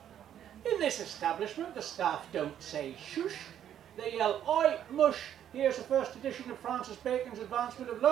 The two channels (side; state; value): left; quieter; 10.2 dB